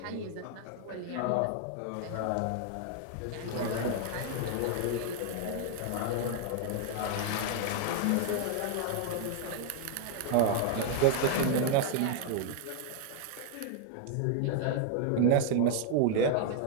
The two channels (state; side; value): different; both; correlation 0.00